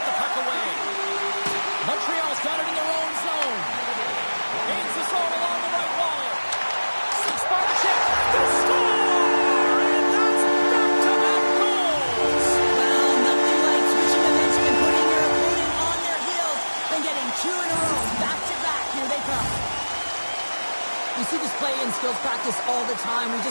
the puck away. Montreal's got it in their own zone. Gains this all along the right wall. skills practice all the time. We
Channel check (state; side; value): inverted; both; correlation -1.00